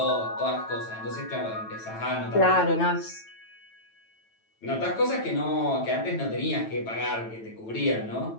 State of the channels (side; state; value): right; late; 9.1 ms